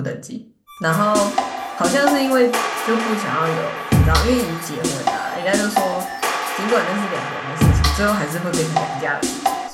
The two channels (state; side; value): identical; both; correlation 1.00